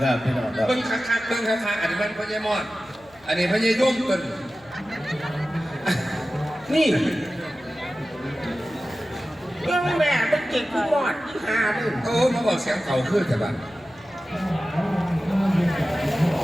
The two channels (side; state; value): left; noise; hum, 28 dB below the sound